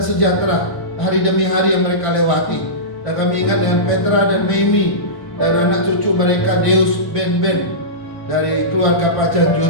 sejahtera hari demi hari yang mereka lewati. Dan kami ingat dengan Petra dan Mimi dan anak cucu mereka Deus, Ben dari keluarga Pak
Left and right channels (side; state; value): right; late; 1.5 ms